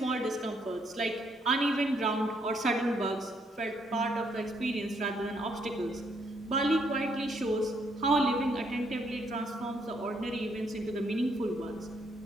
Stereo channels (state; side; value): normal; both; correlation 0.72